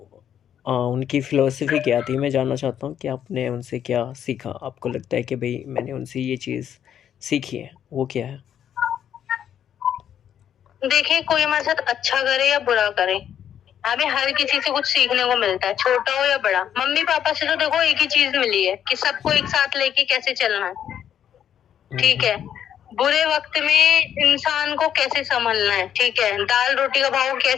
उनकी फ़िलॉसफ़ी क्या थी? मैं जानना चाहता हूँ कि आपने उनसे क्या सीखा? आपको लगता है कि भई मैंने उनसे ये चीज़ सीखी है, वो क्या है? देखिए, कोई हमारे साथ अच्छा करे या बुरा करे, हमें हर किसी से कुछ सीखने को मिलता है, छोटा हो या बड़ा। मम्मी पापा से तो देखो एक ही चीज मिली है कि सबको एक साथ लेके कैसे चलना है, ठीक है। बुरे वक्त में इंसान को कैसे संभलना है, ठीक है। दाल रोटी का भाव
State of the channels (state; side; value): quieter; right; 9.6 dB